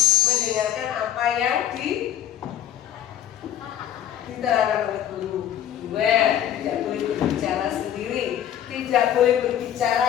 Mendengarkan apa yang diterangkan oleh guru. Dua, tidak boleh berbicara sendiri. Tidak boleh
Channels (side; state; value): right; quieter; 10.8 dB